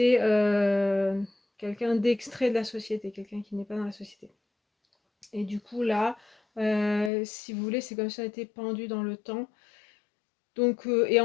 quelqu'un d'extrait de la société, quelqu'un qui n'est pas dans la société. Et du coup, là, si vous voulez, c'est comme si on était pendu dans le temps. Donc, et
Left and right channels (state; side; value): drops out; right; at 7.1 s